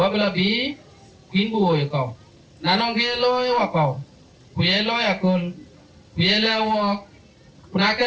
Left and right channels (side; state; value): both; identical; correlation 1.00